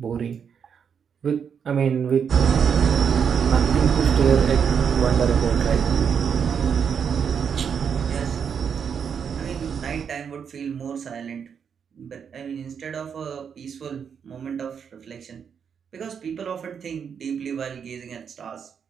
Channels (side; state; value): left; quieter; 7.1 dB